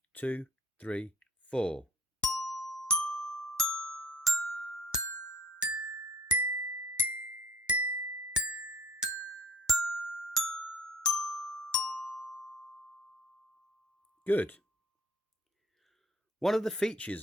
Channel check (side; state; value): both; normal; correlation 0.50